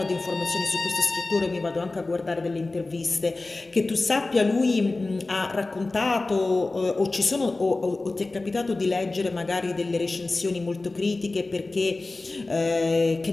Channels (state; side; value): quieter; right; 3.2 dB